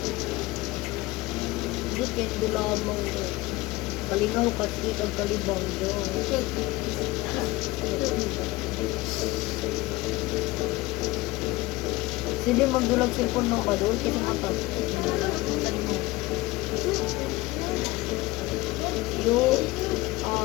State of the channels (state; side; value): quieter; right; 20.0 dB